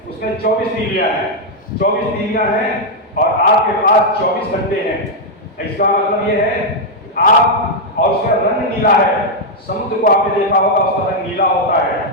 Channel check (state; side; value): normal; both; correlation -0.02